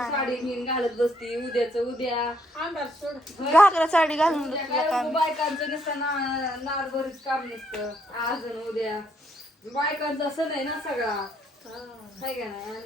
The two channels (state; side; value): normal; both; correlation 0.71